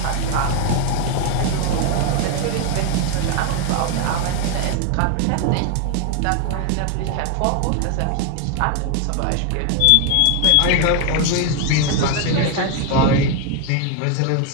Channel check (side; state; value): both; different; correlation 0.01